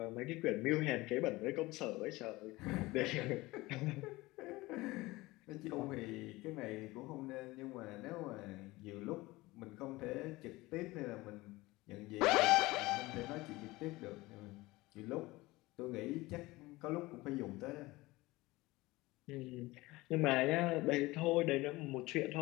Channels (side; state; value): right; quieter; 20.4 dB